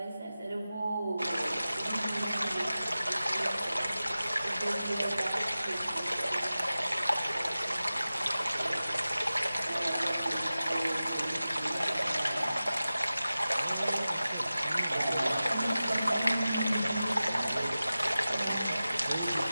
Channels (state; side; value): inverted; both; correlation -0.95